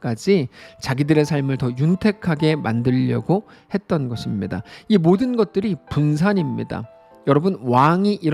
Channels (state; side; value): identical; both; correlation 1.00